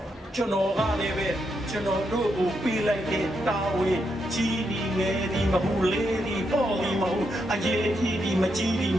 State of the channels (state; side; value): normal; both; correlation 0.81